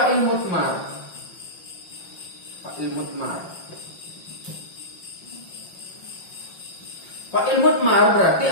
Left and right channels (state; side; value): late; right; 5.7 ms